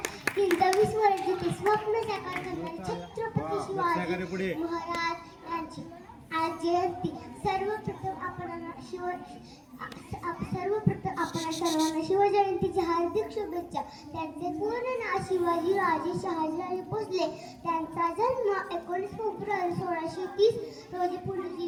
23 वर्षाचे स्वप्न साकार करणारे छत्रपती शिवाजी महाराज यांची आज जयंती. सर्वप्रथम आपण सर्वांना शिवजयंतीच्या हार्दिक शुभेच्छा. त्यांचे पूर्ण नाव शिवाजी राजे शहाजीराजे भोसले. त्यांचा जन्म 19 फेब्रुवारी 1630 रोजी पुणे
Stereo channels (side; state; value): both; identical; correlation 1.00